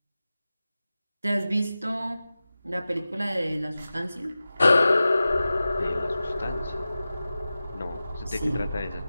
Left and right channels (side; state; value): both; inverted; correlation -0.95